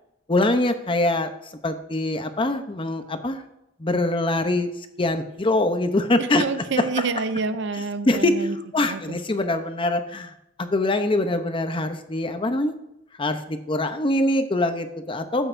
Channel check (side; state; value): both; normal; correlation 0.49